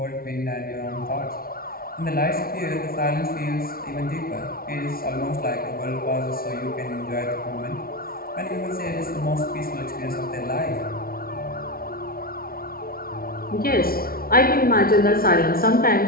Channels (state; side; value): late; right; 0.43 ms